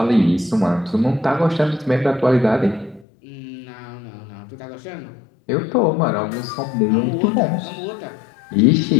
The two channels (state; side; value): drops out; right; at 3.1 s